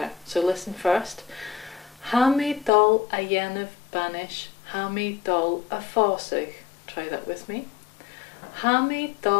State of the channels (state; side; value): drops out; right; at 2.7 s